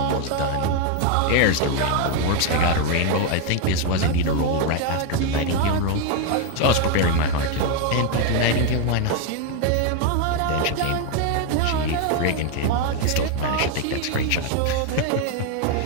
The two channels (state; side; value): different; both; correlation 0.01